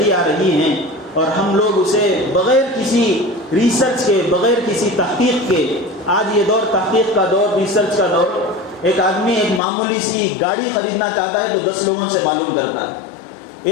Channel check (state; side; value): drops out; right; at 9.6 s